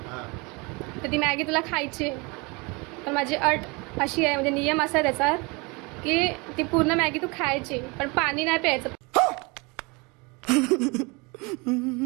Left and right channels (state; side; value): quieter; left; 27.7 dB